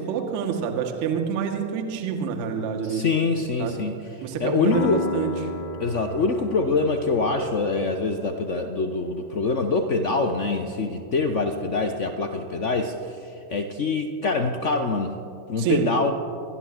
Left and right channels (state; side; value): late; right; 3.5 ms